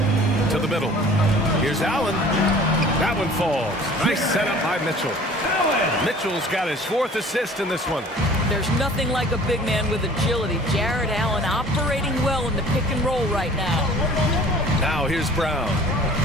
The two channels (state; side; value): normal; both; correlation 0.48